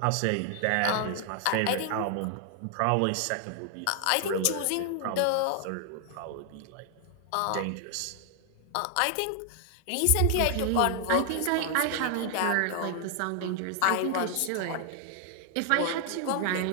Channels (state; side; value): different; both; correlation 0.00